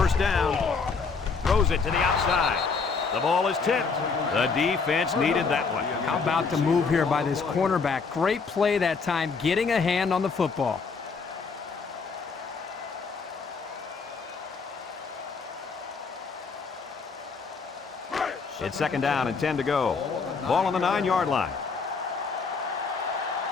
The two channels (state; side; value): quieter; right; 5.0 dB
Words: down. Throws it to the outside. The ball is tipped. The defense needed that one. How about the move here by this cornerback? Great play that time, getting a hand on the football. It's second down and 10 to go. Ball on the 9-yard line.